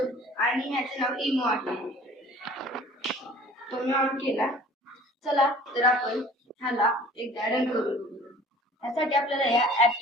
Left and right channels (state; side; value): normal; both; correlation 0.49